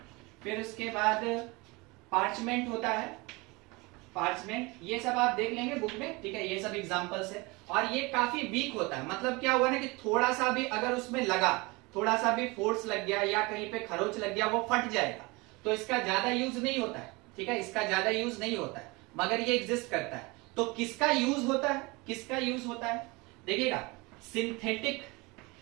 फिर उसके बाद पार्चमेंट होता है, पार्चमेंट, ये सब आप देख लेंगे बुक में, ठीक है, ये सब एग्जांपल्स है। और ये काफी वीक होता है, मतलब क्या हुआ ना कि थोड़ा सा भी अगर उसमें लगा, थोड़ा सा भी फोर्स लग गया या कहीं पे खरोच लग गया, वो फट जाएगा। तो इसका ज्यादा यूज नहीं होता है, ठीक है, इसका ज्यादा यूज नहीं होता है, मगर ये एग्जिस्ट करता है। तो किसका यूज होता है, किसका यूज होता है, देखिएगा,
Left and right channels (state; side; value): quieter; left; 25.3 dB